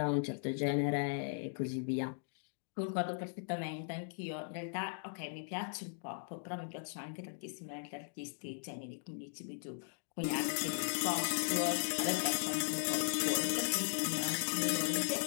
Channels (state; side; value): silent; right; digital silence